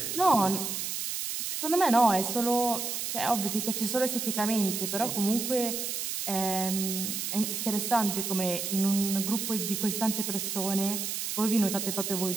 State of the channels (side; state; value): right; noise; hiss, 3 dB below the sound